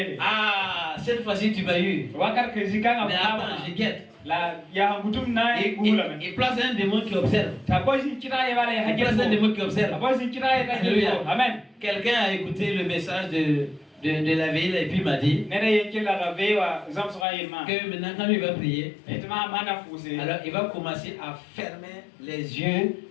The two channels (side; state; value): right; drops out; at 17.2 s